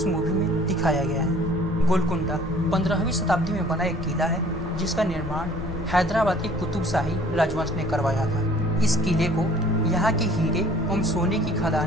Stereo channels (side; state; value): both; normal; correlation 0.53